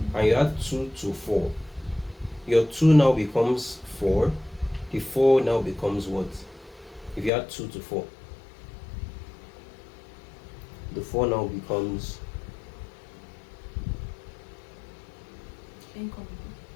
and you add 2 to 4, your 2 now becomes 4, the 4 now becomes what? If you add 2 to 4, the 4 now becomes,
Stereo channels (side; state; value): right; drops out; at 7.3 s